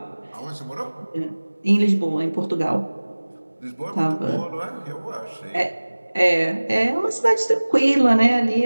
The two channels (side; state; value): both; inverted; correlation -1.00